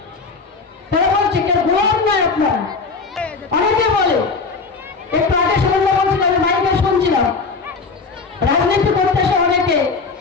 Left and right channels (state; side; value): quieter; right; 4.4 dB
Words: তারা বলছে কেউ গোয়ার নয় আপনারা। অনেকে বলে, একটু আগে শুনলে বলছিল, আমি মাইকে শুনছিলাম, রাজনীতি করতে এসে অনেকে